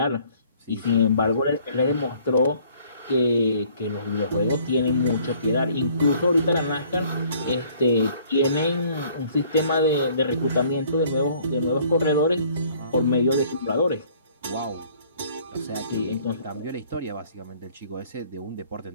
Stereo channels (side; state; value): both; inverted; correlation -0.58